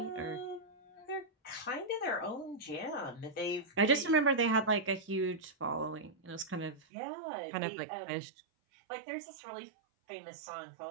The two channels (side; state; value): left; drops out; at 6.8 s